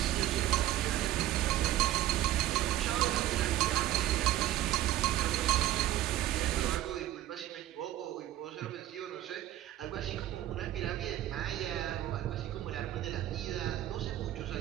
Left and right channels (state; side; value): quieter; left; 13.9 dB